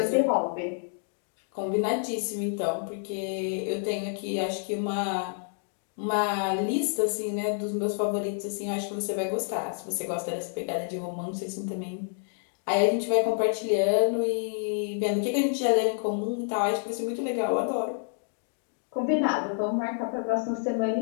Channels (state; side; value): silent; right; digital silence